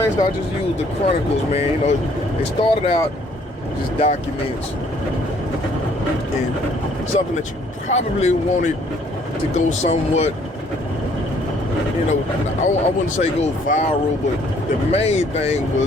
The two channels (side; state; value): both; normal; correlation 0.62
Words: I just use the Chronicles, man. You know, they started out just documents and something that you probably wanted to go somewhat, you know, I wouldn't say go viral, but the main thing